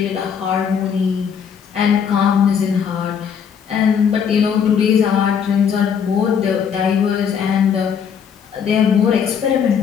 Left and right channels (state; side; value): quieter; right; 7.3 dB